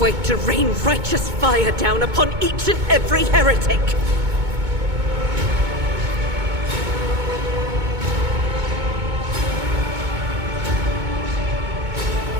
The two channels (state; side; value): late; left; 2.2 ms